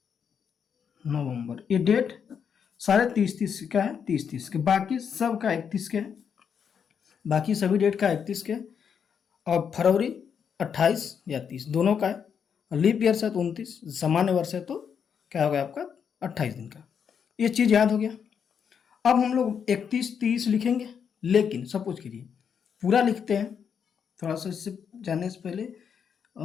नवंबर। ये डेट सारे 30-30 का है, 30-30 के, बाकी सब का 31 के है, बाकी सभी डेट का 31 के, और फरवरी 28 या 30 दोनों का है, और लीप ईयर है तो 29, सामान्य वर्ष है तो क्या हो गया आपका? 28 दिन का। ये चीज़ याद हो गया। अब हम लोग 31-30 लिखेंगे, लेकिन सपोज कीजिए पूरा लिखते हैं, थोड़ा सा इससे जानने से पहले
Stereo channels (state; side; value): quieter; right; 7.2 dB